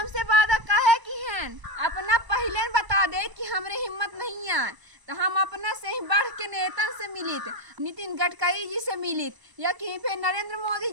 वादा काहे की हैं? अपना पहले बता दे कि हमरे हिम्मत नहीं है, तो हम अपना से ही बढ़ के नेता से मिलित, नितिन गडकरी जी से मिलित या कहीं पे नरेंद्र मोदी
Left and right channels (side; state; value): left; late; 1.0 ms